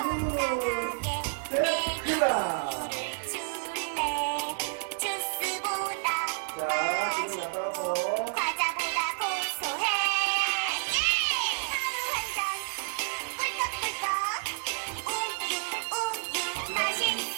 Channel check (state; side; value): silent; left; digital silence